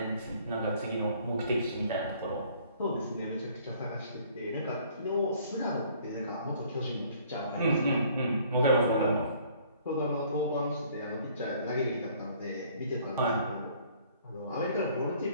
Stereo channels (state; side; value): inverted; both; correlation -0.58